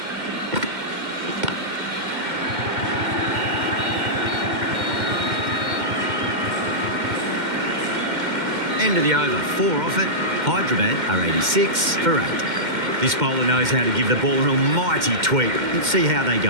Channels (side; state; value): left; late; 2.1 ms